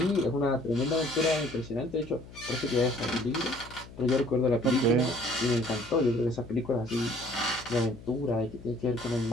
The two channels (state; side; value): noise; left; hum, 17 dB below the sound